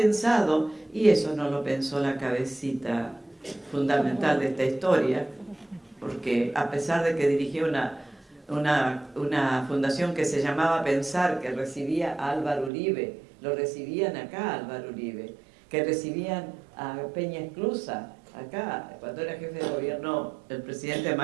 y eso no lo pensó la cabecita fundamental de esta historia, porque a pesar de que dirigió una fundación que se llamaba Pensar, que recibía a Álvaro Uribe, lo recibían acá a Álvaro Uribe, que recibían a Peña Esclusa acá, cuando era jefe de gobierno el presidente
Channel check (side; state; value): left; drops out; at 12.7 s